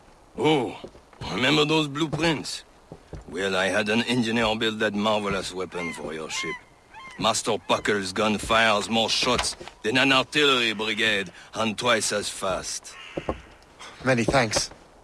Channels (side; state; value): both; identical; correlation 1.00